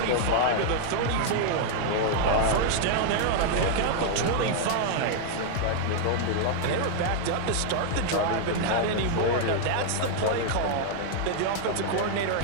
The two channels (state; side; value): different; both; correlation -0.01